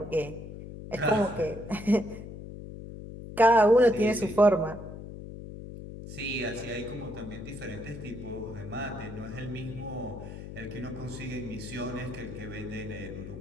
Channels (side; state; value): left; noise; hum, 11 dB below the sound